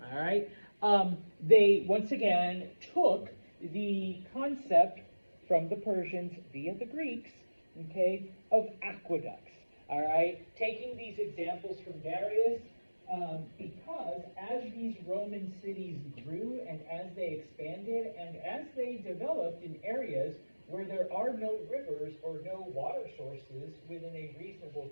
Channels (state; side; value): inverted; both; correlation -1.00